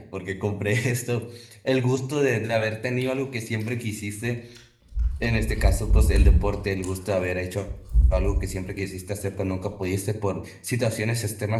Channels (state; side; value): identical; both; correlation 1.00